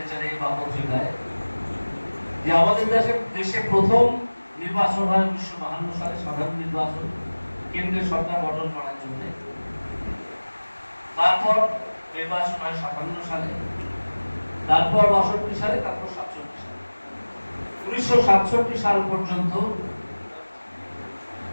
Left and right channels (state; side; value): inverted; both; correlation -1.00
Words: বা পত্রিকায়, যে আমাদের দেশে প্রথম নির্বাচন হয় 1952 সালে, সাধারণ নির্বাচন, কেন্দ্রের সরকার গঠন করার জন্য। তারপর নির্বাচন হয় 57 সালে, তারপর 62 সালে, তারপর 67 সালে। 1967 সাল পর্যন্ত